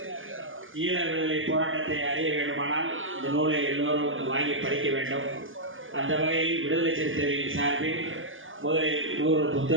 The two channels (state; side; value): late; left; 0.58 ms